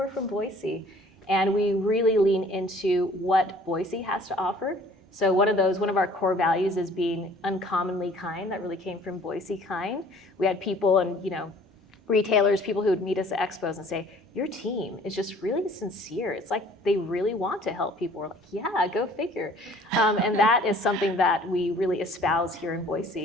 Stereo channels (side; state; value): both; normal; correlation 0.53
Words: from Boise. And we really lean into what Boise has to offer. So one of our core values is being uncommonly kind. That really came from Boise Kind. We had people and retailers, people who would meet us at expos and say, your team is just really sincere. It's like they really want to help people. We're like, yeah, go figure. And that is something that we really espouse here in